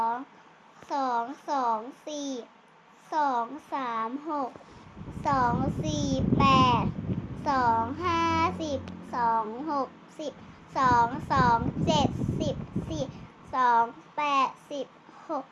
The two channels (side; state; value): both; identical; correlation 1.00